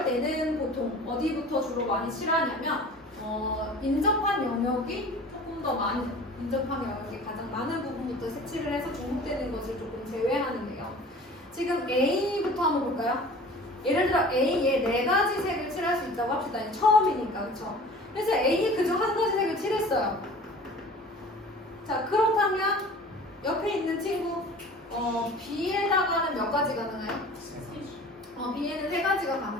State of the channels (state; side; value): normal; both; correlation 0.43